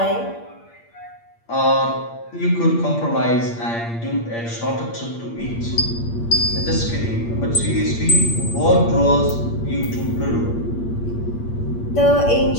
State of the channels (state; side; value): late; right; 8.6 ms